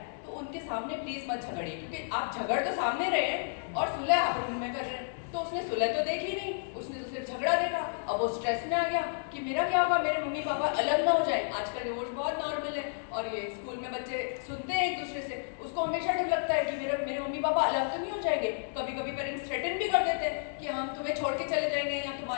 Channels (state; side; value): silent; right; digital silence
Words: तो उनके सामने प्लीज मत झगड़िए, क्योंकि आप झगड़ तो सामने रहे हैं और सुलह आप रूम में कर रहे हैं. तो उसने सुलह तो देखी नहीं, उसने तो सिर्फ झगड़ा देखा. अब वो स्ट्रेस में आ गया कि मेरा क्या होगा, मेरे मम्मी पापा अलग ना हो जाए. आजकल डिवोर्स बहुत नॉर्मल है, और ये स्कूल में बच्चे सुनते हैं एक दूसरे से, उसको हमेशा डर लगता है कि मेरे मम्मी पापा अलग तो नहीं हो जाएंगे. कभी कभी पेरेंट्स थ्रेटन भी कर देते हैं कि हम तुम्हें छोड़ के चले जाएंगे, या